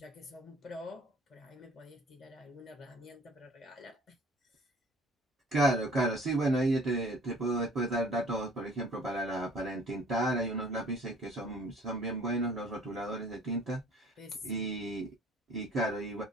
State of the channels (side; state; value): both; normal; correlation 0.52